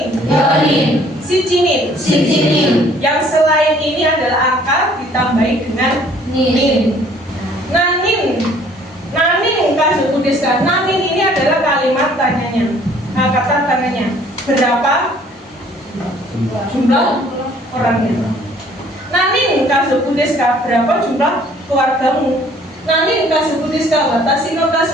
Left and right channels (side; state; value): both; normal; correlation 0.58